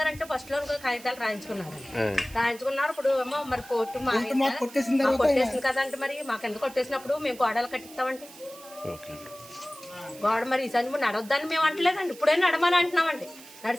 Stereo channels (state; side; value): noise; right; hiss, 19 dB below the sound